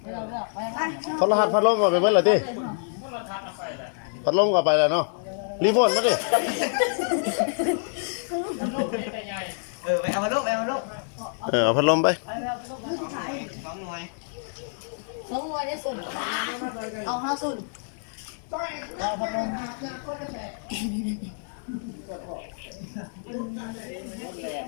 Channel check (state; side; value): silent; right; 60 dB below the other